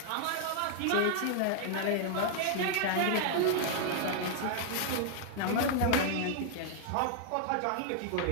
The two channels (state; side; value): different; both; correlation 0.00